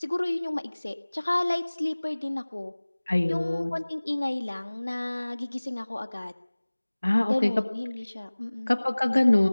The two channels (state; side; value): inverted; both; correlation -1.00